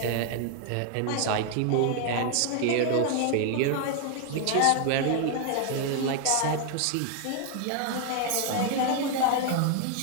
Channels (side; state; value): both; different; correlation 0.00